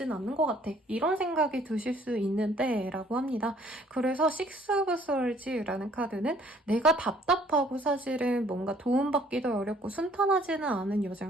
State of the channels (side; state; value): both; normal; correlation 0.59